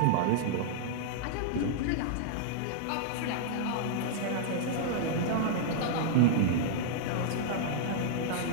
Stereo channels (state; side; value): different; both; correlation -0.02